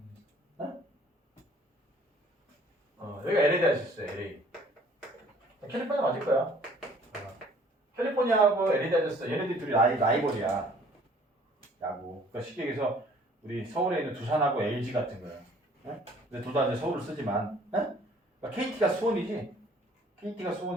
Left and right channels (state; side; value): normal; both; correlation 0.56